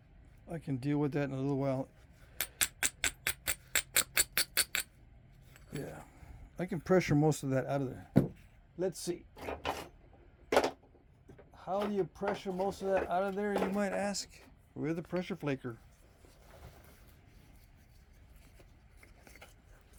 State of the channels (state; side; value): identical; both; correlation 1.00